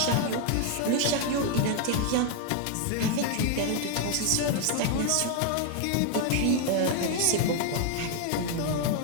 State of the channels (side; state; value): both; different; correlation 0.00